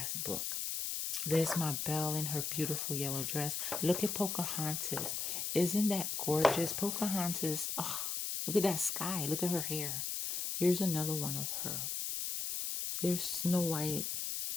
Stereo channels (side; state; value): left; noise; hiss, 2 dB below the sound